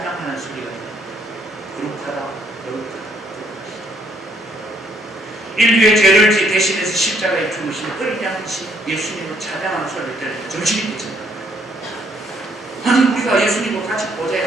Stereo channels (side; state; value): both; normal; correlation 0.69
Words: 소리가 들립니다. 거룩하다, 거룩하다. 인류의 죄를 대신해서 십자가에 죽으신 어린 양이신 예수님을 찬양하는 소리를 들으면 정신이 미친다. 아니, 우리가 예수님과 같이